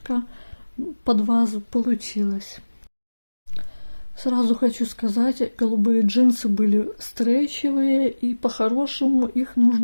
под вазу получилась. Сразу хочу сказать, голубые джинсы были стрейчевые, и по-хорошему их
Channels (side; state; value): both; inverted; correlation -1.00